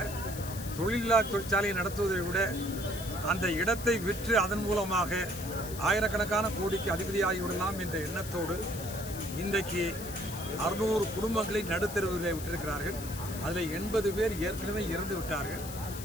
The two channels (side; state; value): left; noise; hiss, 11 dB below the sound